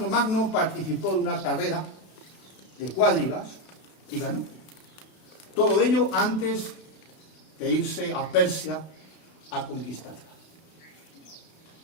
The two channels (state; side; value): late; right; 32 ms